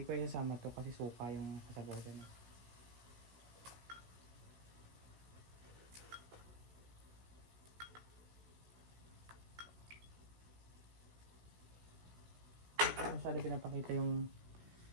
ko isasama to kasi suka yung kasabaw dyan. Masyado pinapakita yung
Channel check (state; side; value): late; left; 16 ms